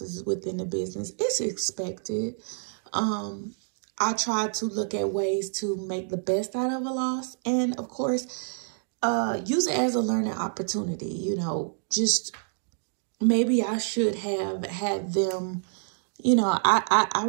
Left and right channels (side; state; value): left; silent; digital silence